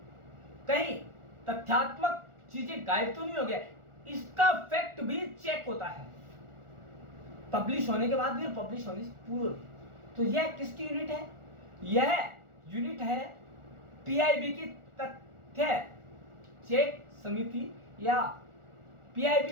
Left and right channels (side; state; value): left; late; 1.4 ms